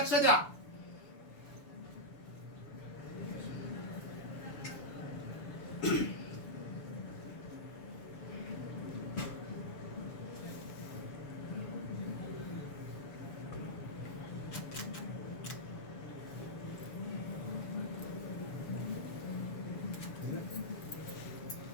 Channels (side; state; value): right; late; 7.0 ms